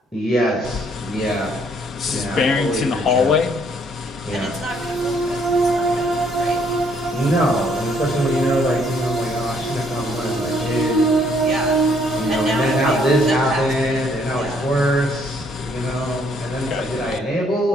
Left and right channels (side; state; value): both; normal; correlation 0.66